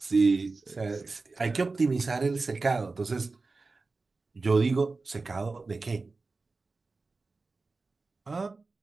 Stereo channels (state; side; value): quieter; left; 3.8 dB